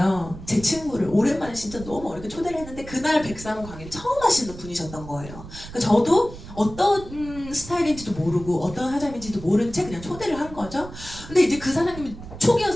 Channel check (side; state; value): right; noise; rumble, 14 dB below the sound